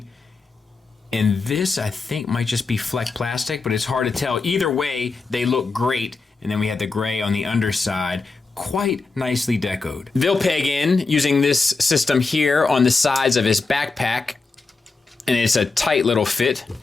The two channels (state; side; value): quieter; right; 4.0 dB